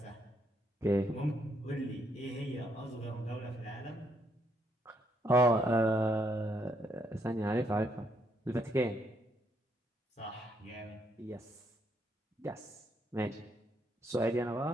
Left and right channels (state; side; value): normal; both; correlation 0.74